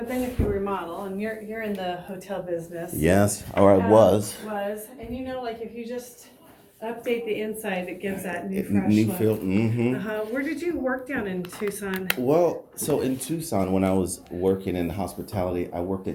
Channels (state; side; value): identical; both; correlation 1.00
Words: then if you remodel, and you're in the hotel business. Yes, or I was. And like if you just update the inside, it gives that new fresh New look. feel. Mm-hmm. Where did you work down in Tucson? Well, so in Tucson, when I was working in hospitality, I worked